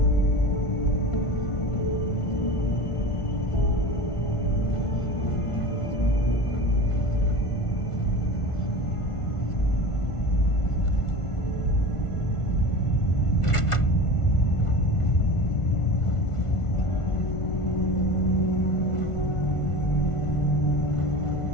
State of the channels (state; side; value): late; right; 1.4 ms